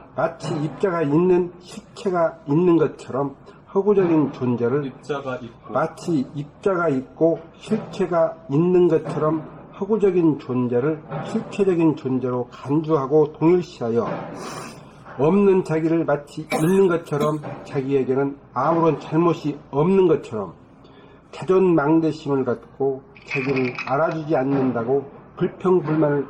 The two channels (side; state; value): both; identical; correlation 1.00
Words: 마치 입자가 있는 실체가 있는 것처럼 허구적인 존재를 입자가 있고 마치 입자가 있고 실체가 있는 것처럼 허구적인 존재를 실체적인 존재로 간주하고 동일시하여 없는 자기를 마치 있는 것처럼 자기에게는 아무런 잘못이 없는 것처럼 자존망대심을 갖고 자기를 알아주지 않는다고 불평불만을